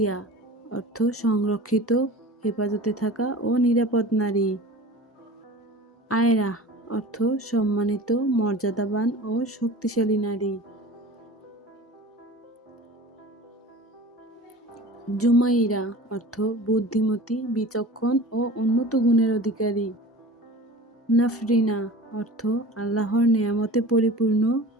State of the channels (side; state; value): both; normal; correlation 0.38